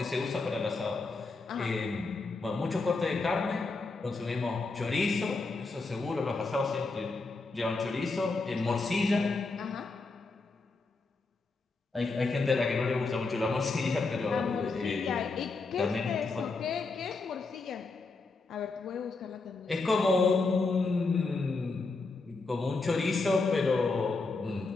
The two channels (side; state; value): right; quieter; 3.8 dB